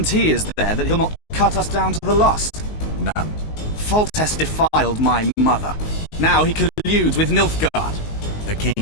is there that he'll not cut us down to the last? None. Foltest defiled my mother. Now he colludes with Nilfgaard. The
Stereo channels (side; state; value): right; late; 19 ms